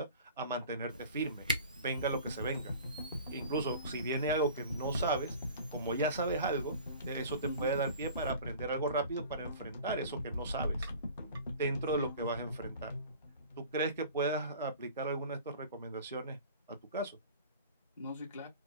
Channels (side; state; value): both; inverted; correlation -0.43